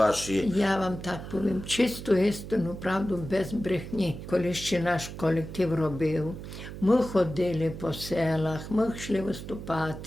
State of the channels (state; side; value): noise; right; hum, 10 dB below the sound